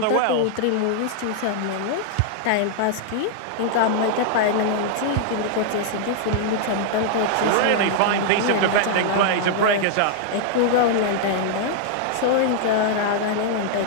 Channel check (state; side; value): different; both; correlation 0.00